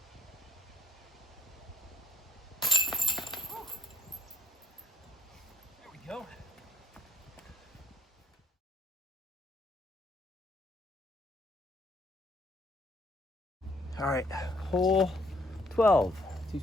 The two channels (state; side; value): normal; both; correlation 0.66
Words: There we go. All right, hole 12,